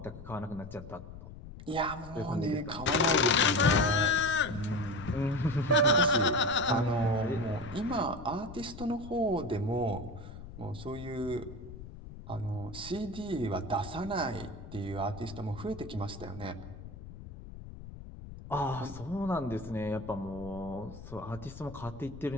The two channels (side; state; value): left; noise; rumble, 14 dB below the sound